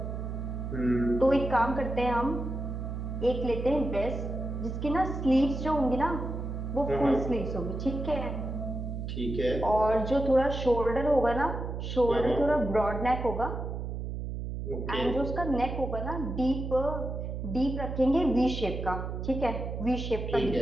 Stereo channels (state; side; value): noise; right; hum, 5 dB below the sound